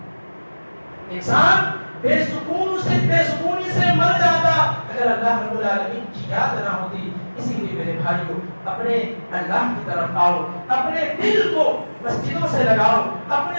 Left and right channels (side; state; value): both; inverted; correlation -1.00